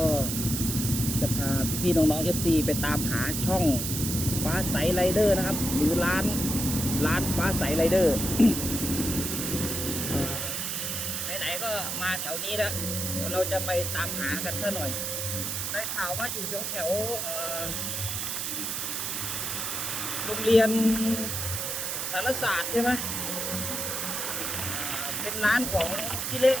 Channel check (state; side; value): noise; right; hiss, 2 dB below the sound